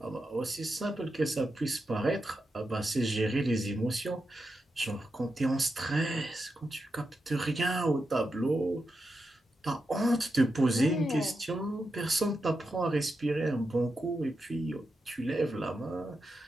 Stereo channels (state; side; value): normal; both; correlation 0.87